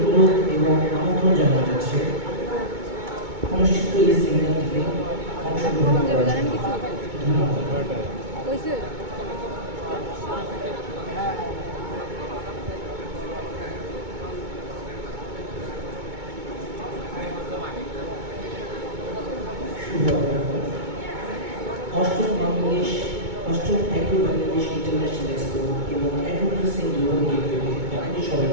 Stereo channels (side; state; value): left; late; 2.2 ms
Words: এবং আমন্ত্রণ জানানো যাচ্ছে অনুষ্ঠিত এই সেমিনারটিতে অংশগ্রহণ করার জন্য। ধন্যবাদ। অষ্টম অ্যাগ্রো বাংলাদেশ ইন্টারন্যাশনাল এক্সপো এবং অ্যাগ্রোপ্রসেসিং গ্লোবাল গেটওয়েতে আপনাদের